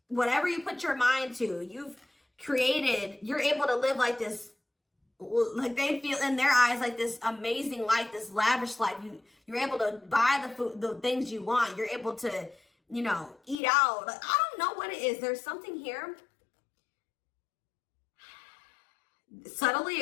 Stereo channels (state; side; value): drops out; right; at 13.6 s